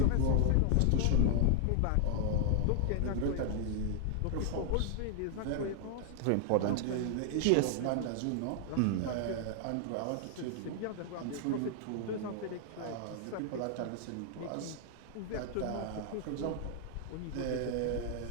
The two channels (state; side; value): different; both; correlation 0.00